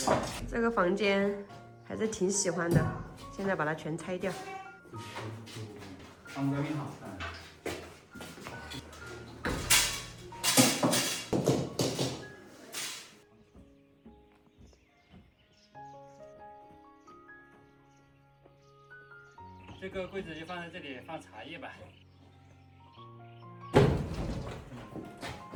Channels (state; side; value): identical; both; correlation 1.00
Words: 这个房间还是挺喜欢的，现在把它全拆掉。这个柜子就放在这里，放茶叶吧。